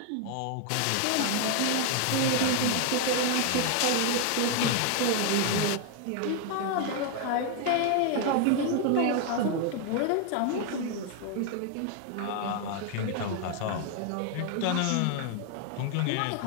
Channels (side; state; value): both; different; correlation 0.00